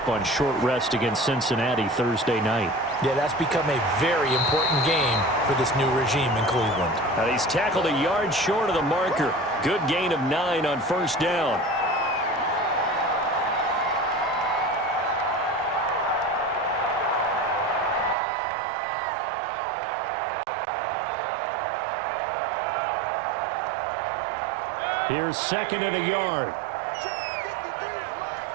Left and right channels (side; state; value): left; drops out; at 18.2 s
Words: on short rest against Cincinnati Thursday night. Yeah, that's become a very important game for this new regime in Cleveland. Now, he's tackled a yard short of the marker. Good gain of 9 on first down. Here's 2nd and a yard.